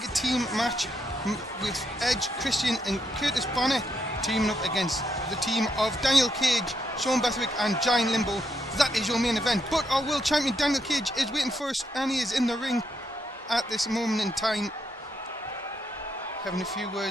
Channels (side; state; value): both; normal; correlation 0.78